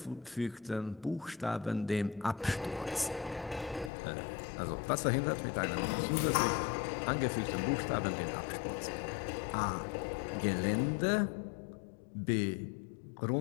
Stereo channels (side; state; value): right; drops out; at 3.9 s